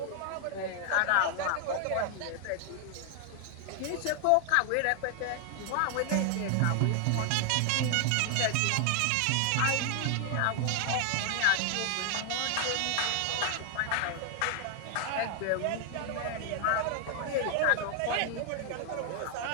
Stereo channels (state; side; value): different; both; correlation 0.00